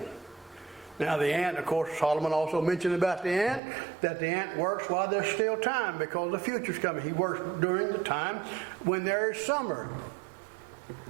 Now the ant, of course, Solomon also mentioned about the ant, that the ant works while there's still time, because the future's coming. He works during the time when there is summer.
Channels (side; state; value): left; drops out; at 3.6 s